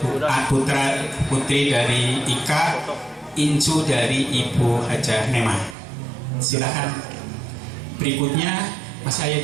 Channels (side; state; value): left; drops out; at 5.8 s